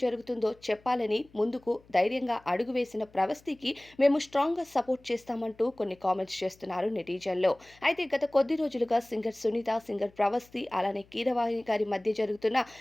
జరుగుతుందో చెప్పాలని ముందుకు ధైర్యంగా అడుగు వేసిన 'ప్రవస్తి'కి మేము స్ట్రాంగ్‌గా సపోర్ట్ చేస్తామంటూ కొన్ని కామెంట్స్ చేస్తున్నారు నెటిజన్లు. అయితే గత కొద్ది రోజులుగా సింగర్ సునీత, సింగర్ 'ప్రవస్తి' అలానే కీరవాణి గారి మధ్య జరుగుతున్న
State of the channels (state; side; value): noise; left; hum, 28 dB below the sound